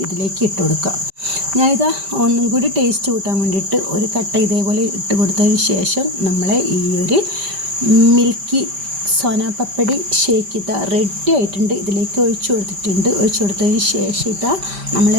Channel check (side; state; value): left; late; 5.1 ms